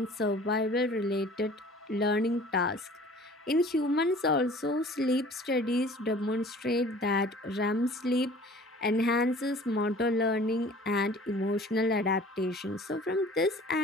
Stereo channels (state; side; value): normal; both; correlation 0.47